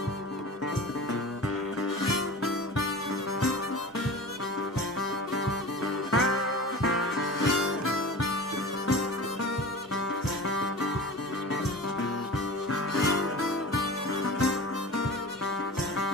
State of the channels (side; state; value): both; normal; correlation 0.35